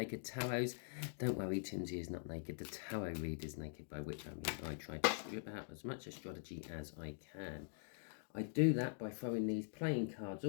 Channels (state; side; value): silent; right; digital silence